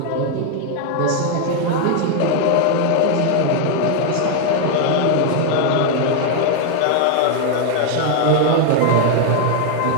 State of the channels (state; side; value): different; both; correlation 0.00